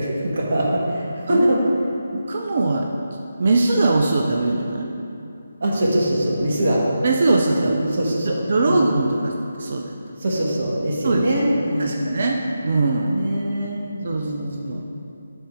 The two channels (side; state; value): both; inverted; correlation -0.88